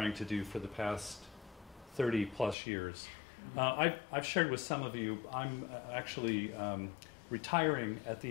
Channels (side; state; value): right; drops out; at 2.6 s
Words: to do for the past 30 plus years. I've shared with some of you, I'm actually retiring at